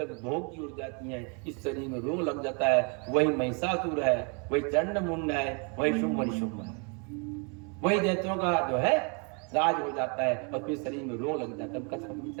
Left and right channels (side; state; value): left; quieter; 35.8 dB